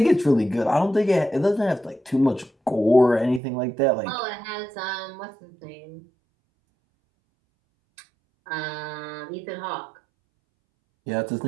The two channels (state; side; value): drops out; left; at 3.4 s